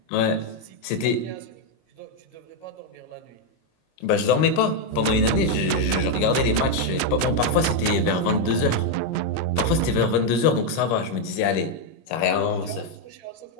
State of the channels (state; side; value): late; right; 26 ms